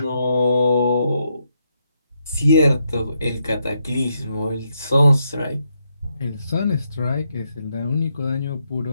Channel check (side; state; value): both; inverted; correlation -0.80